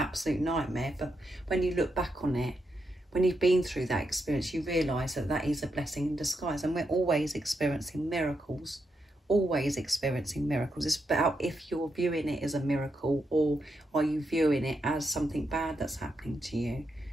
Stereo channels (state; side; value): normal; both; correlation 0.83